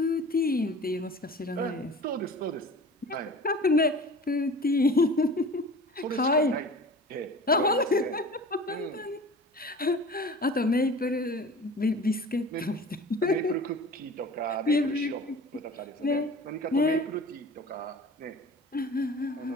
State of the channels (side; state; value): both; normal; correlation 0.40